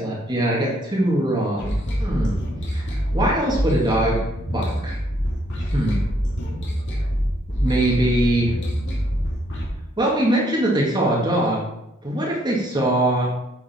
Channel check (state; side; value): normal; both; correlation 0.69